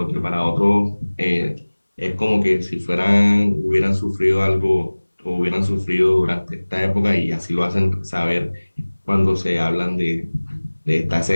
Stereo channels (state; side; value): inverted; both; correlation -1.00